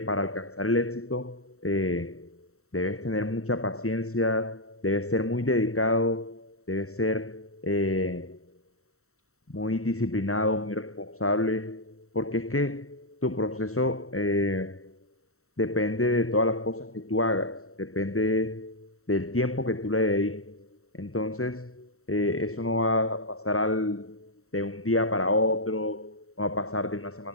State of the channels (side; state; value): right; late; 0.64 ms